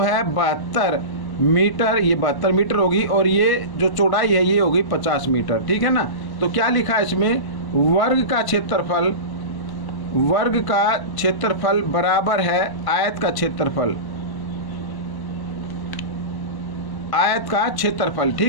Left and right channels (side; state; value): right; late; 1.1 ms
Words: 72 मीटर, ये 72 मीटर होगी, और ये जो चौड़ाई है ये होगी 50 मीटर, ठीक है ना। तो क्या लिखा है इसमें, वर्ग का क्षेत्रफल बराबर है आयत का क्षेत्रफल, आयत का क्षेत्रफल,